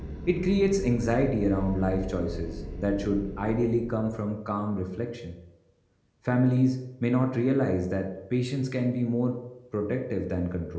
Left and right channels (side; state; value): both; identical; correlation 1.00